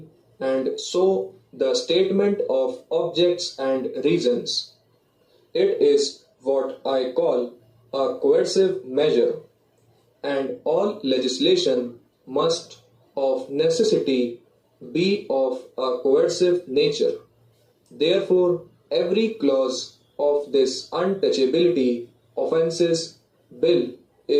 and so the statement of objects and reasons. It is what I call a coercive measure, and all legislation must of necessity be of a coercive nature. Therefore, every clause of this untouchability offences bill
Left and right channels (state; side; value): identical; both; correlation 1.00